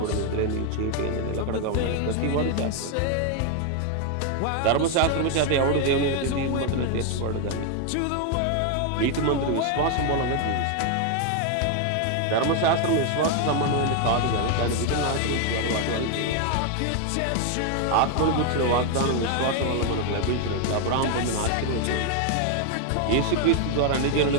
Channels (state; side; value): different; both; correlation 0.01